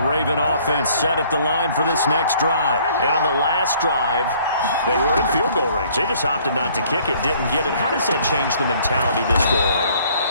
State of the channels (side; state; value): both; inverted; correlation -0.59